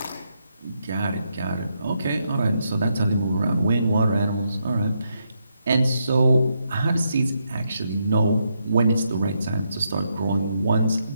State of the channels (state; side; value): inverted; both; correlation -0.80